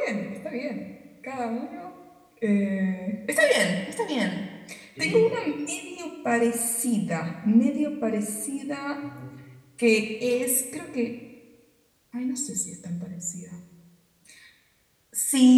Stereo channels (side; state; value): both; identical; correlation 1.00